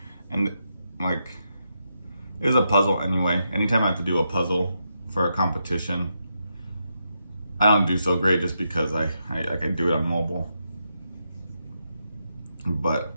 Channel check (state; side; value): inverted; both; correlation -0.83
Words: And like, it was a puzzle anyway. Anytime I have to do a puzzle for a competition, I don't do so great just because I do it on mobile. But